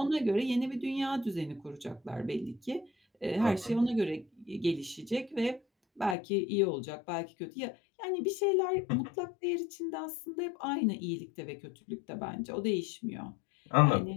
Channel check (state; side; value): drops out; right; at 6.2 s